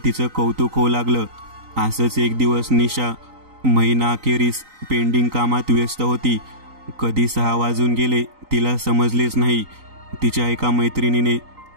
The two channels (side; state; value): left; late; 3.9 ms